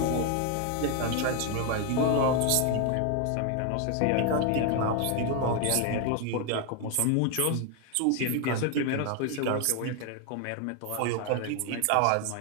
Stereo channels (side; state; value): both; different; correlation 0.01